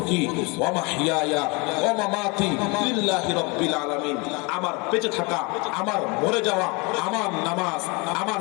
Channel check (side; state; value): right; quieter; 28.4 dB